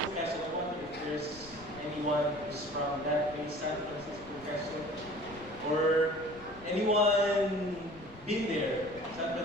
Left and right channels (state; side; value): noise; left; rumble, 20 dB below the sound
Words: Quezon. I wonder if there's anyone who's from that place, San Francisco, Quezon, or anyone been there, San